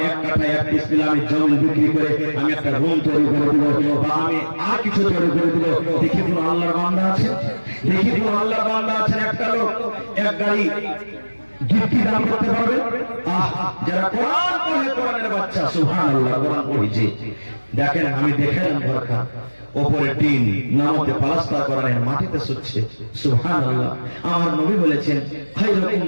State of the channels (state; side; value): inverted; both; correlation -1.00